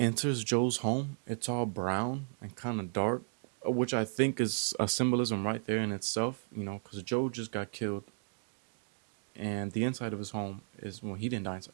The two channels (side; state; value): left; silent; digital silence